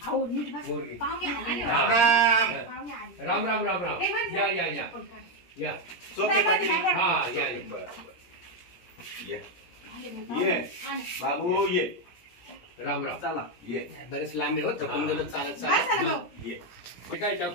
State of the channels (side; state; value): right; late; 17 ms